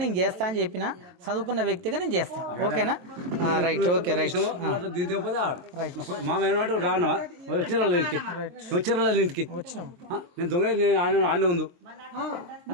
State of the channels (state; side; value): late; left; 23 ms